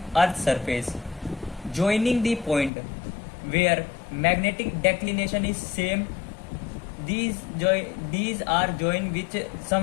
earth surface joining the point where magnetic declination is same. These are joined with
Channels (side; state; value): right; drops out; at 2.7 s